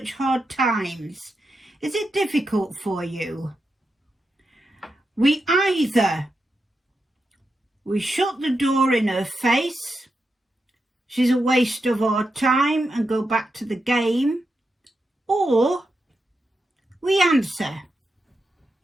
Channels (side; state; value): both; normal; correlation 0.87